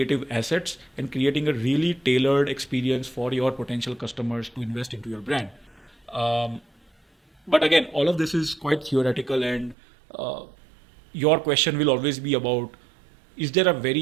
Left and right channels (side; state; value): left; drops out; at 9.8 s